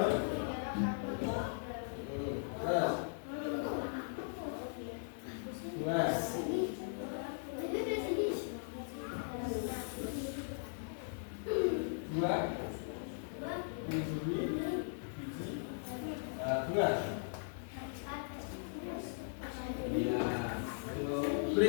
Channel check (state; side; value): silent; right; 52 dB below the other